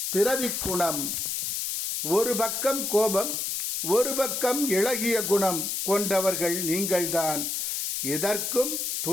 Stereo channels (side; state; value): left; noise; hiss, 2 dB below the sound